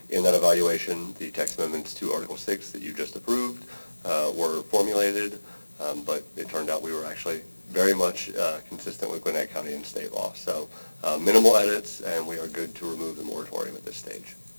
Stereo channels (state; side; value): inverted; both; correlation -1.00